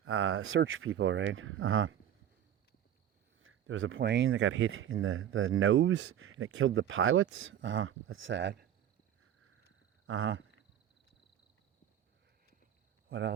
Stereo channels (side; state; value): left; quieter; 10.4 dB